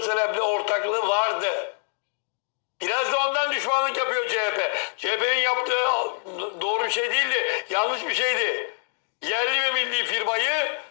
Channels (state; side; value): silent; right; 57 dB below the other